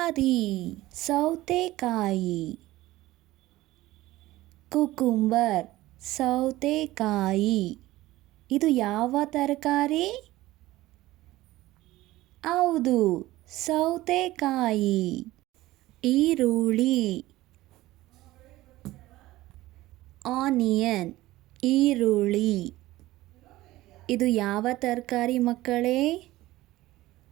ಸೌತೆಕಾಯಿ. ಕುಕುಂಬರ್ ಸೌತೆಕಾಯಿ. ಇದು ಯಾವ ತರಕಾರಿ? ಹೌದು, ಸೌತೆಕಾಯಿ. ಈರುಳ್ಳಿ ಆನಿಯನ್ ಈರುಳ್ಳಿ. ಇದು ಯಾವ ತರಕಾರಿ ಮಕ್ಕಳೇ?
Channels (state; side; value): quieter; left; 17.2 dB